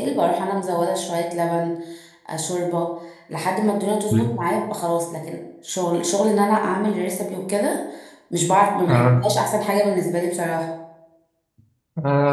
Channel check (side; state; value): both; identical; correlation 1.00